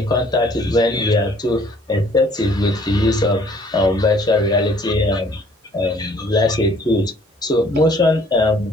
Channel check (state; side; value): normal; both; correlation 0.59